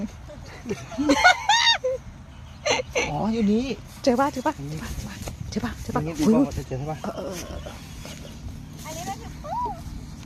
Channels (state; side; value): identical; both; correlation 1.00